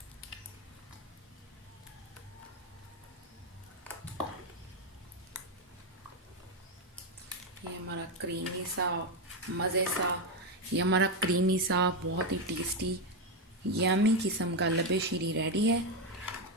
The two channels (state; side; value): normal; both; correlation 0.08